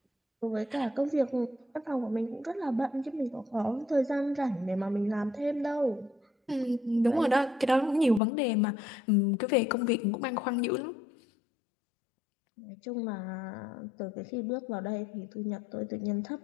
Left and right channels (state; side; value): drops out; right; at 8.2 s